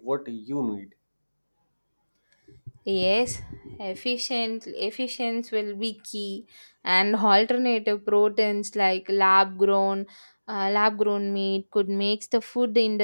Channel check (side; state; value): both; inverted; correlation -1.00